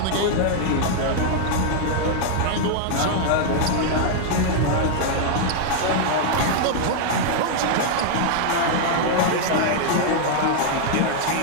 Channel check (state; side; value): different; both; correlation 0.00